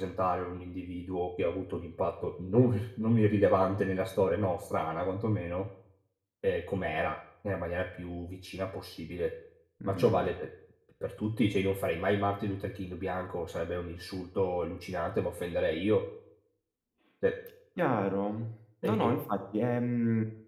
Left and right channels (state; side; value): identical; both; correlation 1.00